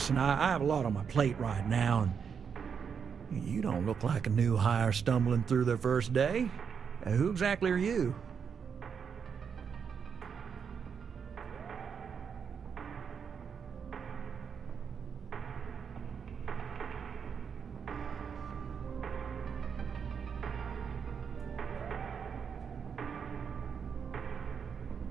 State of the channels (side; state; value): left; quieter; 6.7 dB